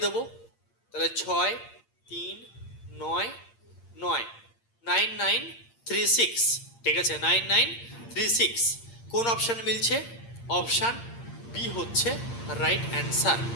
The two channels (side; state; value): right; late; 8.7 ms